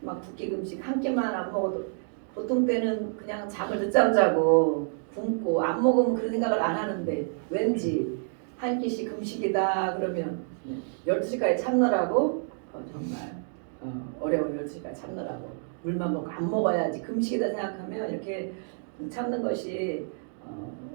막 두 끼 금식 한 끼만 안 먹어도 보통 때는 그냥 잠을 늦잠 자고 굶고 안 먹으면 그런 생각을 안 하는데 왠지 한 끼씩 금식이다 그러면 12시까지 참느라고 정말 어려운 12시까지 참느라고 물만 먹고 안 먹어야지 금식이다 생각하면 이렇게 참는 것이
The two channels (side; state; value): left; silent; 59 dB below the other